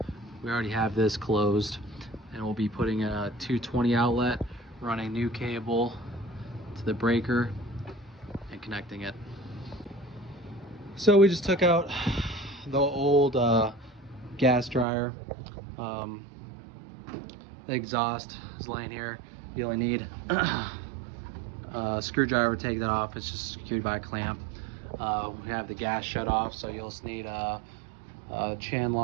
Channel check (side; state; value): left; drops out; at 14.9 s